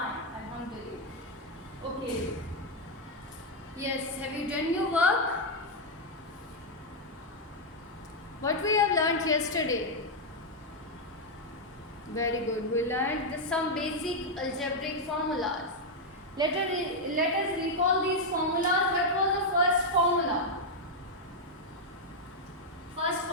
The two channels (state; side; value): normal; both; correlation 0.00